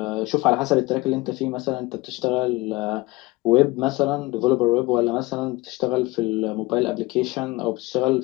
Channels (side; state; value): right; quieter; 21.7 dB